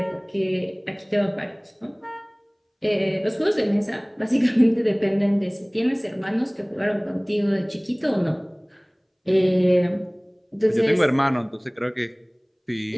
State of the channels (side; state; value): both; identical; correlation 1.00